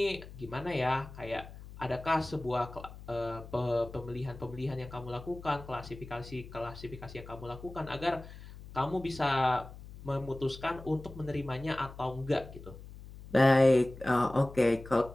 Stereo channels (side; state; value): left; noise; hum, 15 dB below the sound